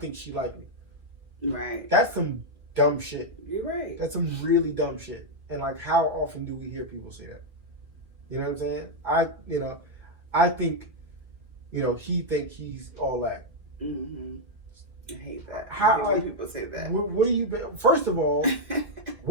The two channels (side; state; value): left; late; 2.3 ms